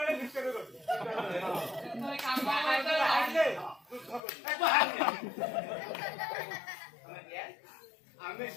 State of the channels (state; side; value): drops out; right; at 4.2 s